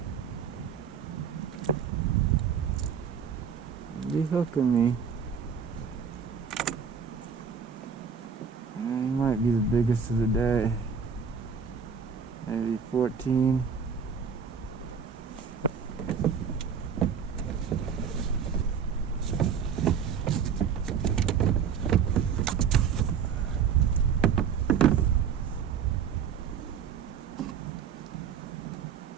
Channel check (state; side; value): quieter; left; 7.0 dB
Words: Be hooking me. He might be the biggest of the day. Maybe 14.